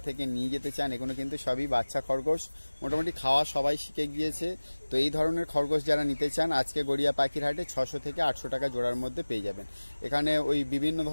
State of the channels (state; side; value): inverted; both; correlation -1.00